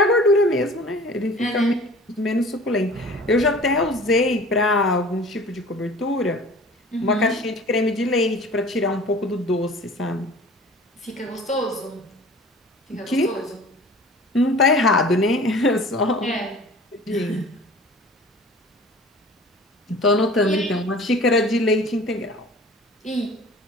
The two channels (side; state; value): both; normal; correlation 0.44